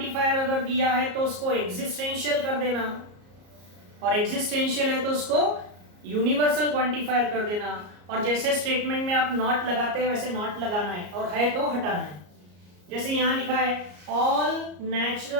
अगर दिया है तो उसको एग्जिस्टेंशियल कर देना, और एग्जिस्टेंशियल है तो उसको यूनिवर्सल क्वांटिफायर कर देना। और जैसे स्टेटमेंट में आप नॉट लगाते हैं वैसे नॉट लगाना है, और है तो हटाना है। जैसे यहां लिखा है all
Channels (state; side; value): late; left; 34 ms